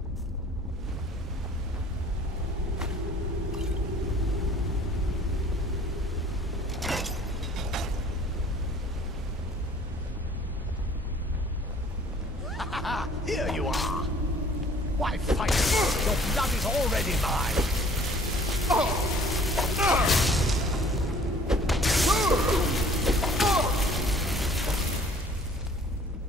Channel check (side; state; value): both; normal; correlation 0.53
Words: Here you are! Why fight? Your blood is already mine!